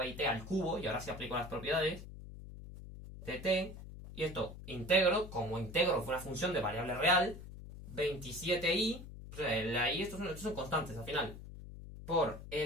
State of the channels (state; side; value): noise; left; hum, 13 dB below the sound